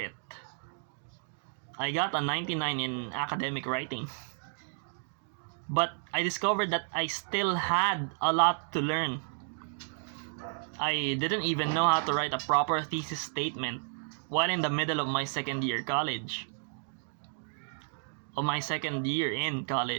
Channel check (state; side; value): silent; left; digital silence